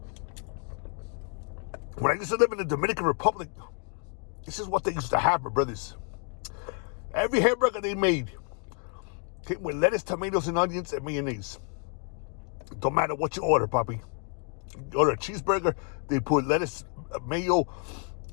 I used to live in the Dominican Republic, this is what they used to have, my brothers. Every hamburger they made came with lettuce, tomatoes, and onions, and mayonnaise. Don't matter what you order, Papi. You order a cheeseburger, they put lettuce, mayo,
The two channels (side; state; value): right; quieter; 39.6 dB